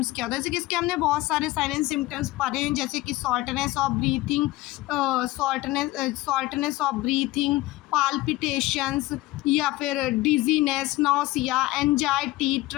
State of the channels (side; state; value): right; quieter; 18.5 dB